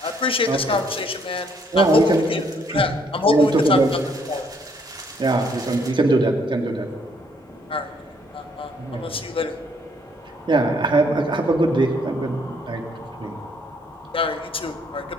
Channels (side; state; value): both; normal; correlation 0.68